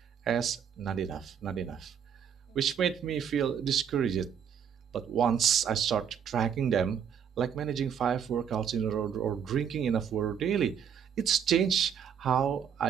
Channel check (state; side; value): quieter; left; 8.0 dB